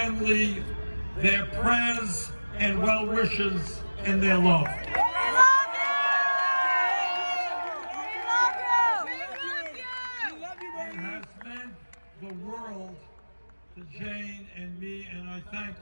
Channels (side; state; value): both; inverted; correlation -1.00